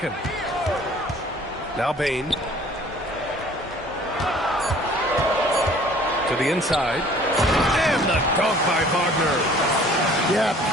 Now Bane. To the inside. And the dunk by Wagner. Yeah,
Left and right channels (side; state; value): both; normal; correlation 0.52